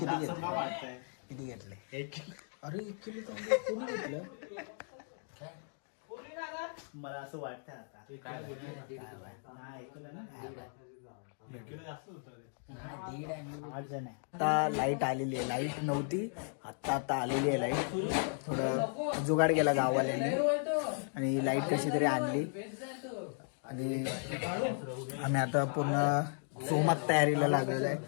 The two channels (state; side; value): silent; right; 54 dB below the other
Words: घेतले? अरे 1 किलो तांदूळ कोणी घेतलं? मला असं वाटतं आता लाईट आलेली आहे. लाईट नव्हती आता आलेली आहे लाईट. थोडं जुगाड केला गाववाल्यांनी आणि लाईट कशी तरी आणली. आणि आम्ही आता पूर्ण सोमात तयारीला लागलेलो आहे.